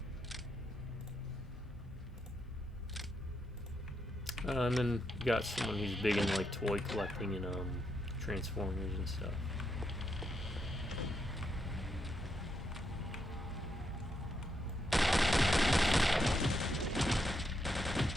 And then you got someone who's big in like toy collecting and Transformers and stuff.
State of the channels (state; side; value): normal; both; correlation 0.80